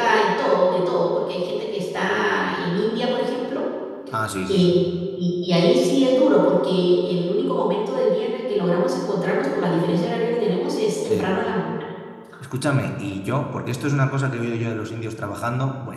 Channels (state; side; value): identical; both; correlation 1.00